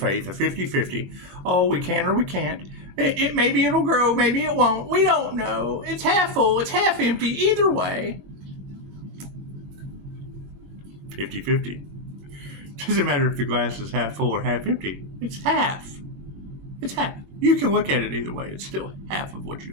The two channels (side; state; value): left; late; 21 ms